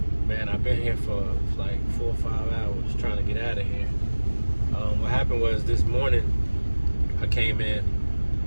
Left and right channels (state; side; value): inverted; both; correlation -1.00